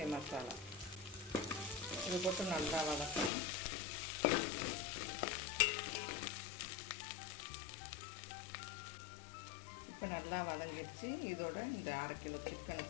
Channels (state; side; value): drops out; right; at 3.3 s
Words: மசாலா. இது போட்டு நல்லா வதக்கணும். இப்போ நல்லா வதங்கிடுச்சு. இதோட இந்த 1/2 கிலோ சிக்கனை